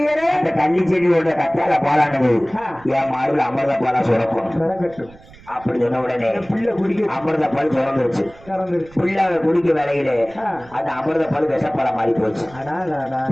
அந்த கள்ளி செடியோட கத்தால பாலானது என் மாறுல அமிர்தப்பாலா சுரக்கும். அப்படி சொன்ன உடனே அமிர்தப்பால் சுரந்துருச்சு. பிள்ளை குடிக்க வேலையில அந்த அமிர்தப்பால் விஷப்பால மாறி போச்சு.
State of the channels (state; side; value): noise; right; rumble, 23 dB below the sound